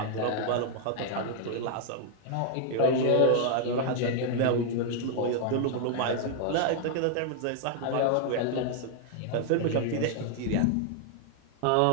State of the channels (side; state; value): both; different; correlation 0.00